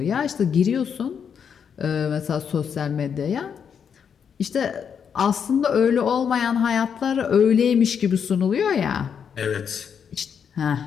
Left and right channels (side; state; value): right; quieter; 7.3 dB